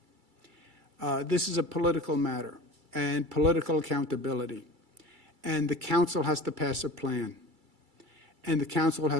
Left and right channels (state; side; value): late; left; 2.3 ms